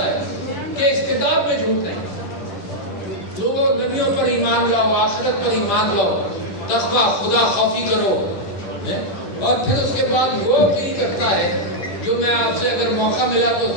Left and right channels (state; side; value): late; right; 11 ms